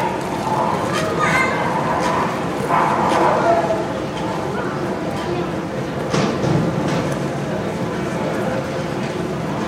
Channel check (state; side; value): identical; both; correlation 1.00